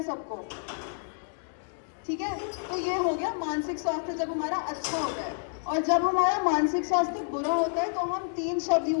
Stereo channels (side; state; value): right; silent; digital silence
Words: सबको। ठीक है, तो ये हो गया मानसिक स्वास्थ्य जब हमारा अच्छा होता है। और जब हमारा मानसिक स्वास्थ्य बुरा होता है तो हम 3 शब्द